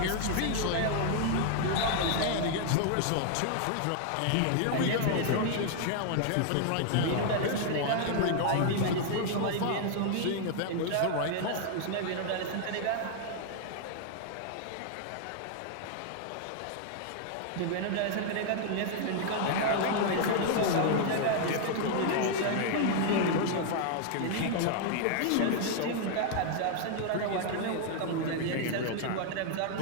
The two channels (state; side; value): different; both; correlation 0.00